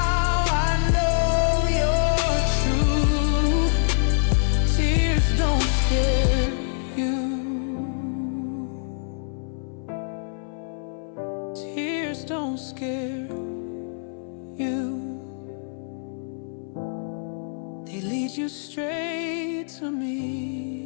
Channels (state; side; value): silent; right; 62 dB below the other